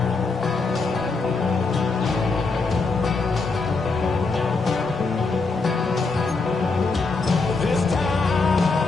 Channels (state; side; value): quieter; right; 4.0 dB